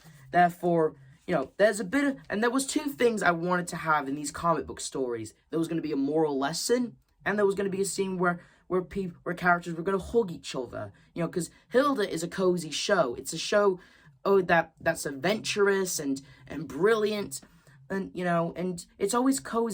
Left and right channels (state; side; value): identical; both; correlation 1.00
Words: therefore, you know, there's a bit of, and there was two things I wanted to have in these comic book stories. There was going to be a moral lesson, and there was going to be a scene where characters were going to hug each other. You know, because Hilda is a cozy show. It's a show, that's adventurous and brilliant, and you know, and it's always